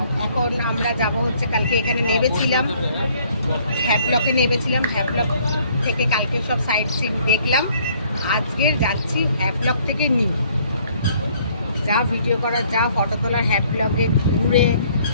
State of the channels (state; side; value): inverted; both; correlation -0.62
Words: এখন আমরা যাব হচ্ছে, কালকে এখানে নেমেছিলাম, হ্যাভলকে নেমেছিলাম। হ্যাভলক থেকে কালকে সব সাইট সিন দেখলাম। আজকে যাচ্ছি হ্যাভলক থেকে নিউ। যা ভিডিও করার, যা ফটো তোলার হ্যাভলকে ঘুরে